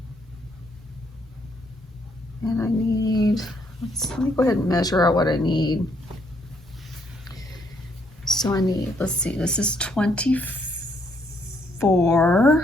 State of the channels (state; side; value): normal; both; correlation 0.71